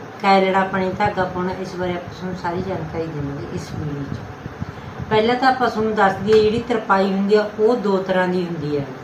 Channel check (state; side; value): identical; both; correlation 1.00